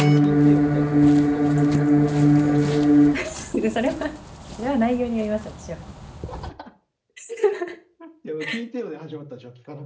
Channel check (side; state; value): both; identical; correlation 1.00